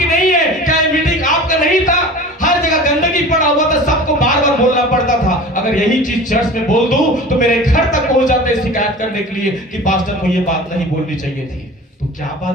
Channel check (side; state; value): both; normal; correlation 0.38